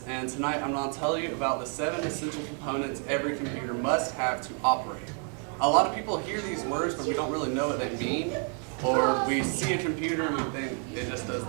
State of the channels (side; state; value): left; quieter; 39.4 dB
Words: and tonight I'm going to tell you about the 7 essential components every computer must have to operate. A lot of people hear these words, but we don't really know what they mean, or we see a computer and we think it just does